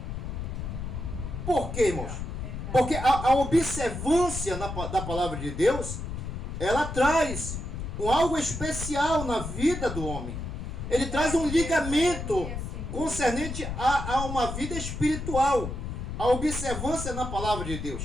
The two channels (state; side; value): noise; left; rumble, 6 dB below the sound